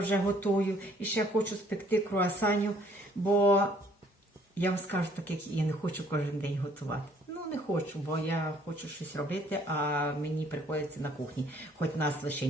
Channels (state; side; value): normal; both; correlation 0.61